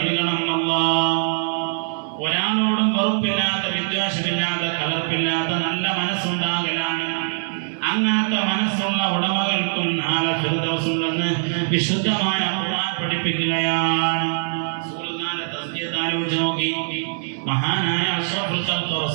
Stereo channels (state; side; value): silent; left; digital silence